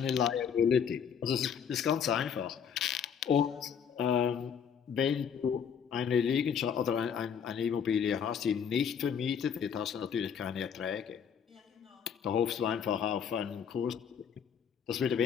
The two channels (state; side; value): quieter; right; 7.5 dB